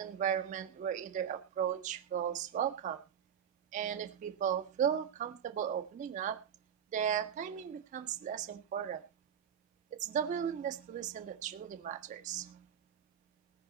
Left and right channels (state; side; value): quieter; left; 8.6 dB